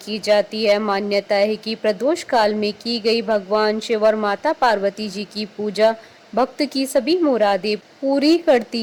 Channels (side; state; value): both; identical; correlation 1.00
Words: जाती है। मान्यता है कि प्रदोष काल में की गई भगवान शिव और माता पार्वती जी की पूजा भक्त की सभी मुरादें पूरी